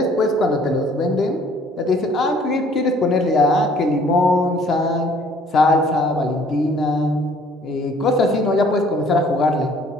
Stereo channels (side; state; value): both; normal; correlation 0.57